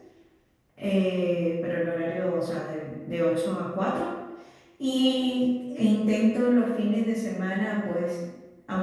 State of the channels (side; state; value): both; identical; correlation 1.00